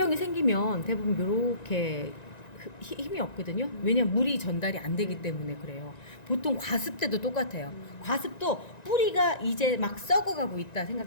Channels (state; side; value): late; right; 1.9 ms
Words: 생기면 대부분 이렇게 힘이 없거든요. 왜냐면 물이 전달이 안 되기 때문에 그래요. 보통 과습 때도 똑같아요. 과습도 뿌리가 이제 막 썩어가고 있다